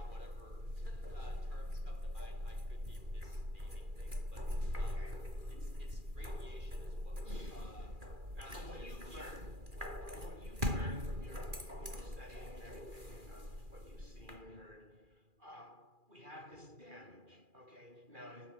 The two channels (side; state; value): left; late; 2.4 ms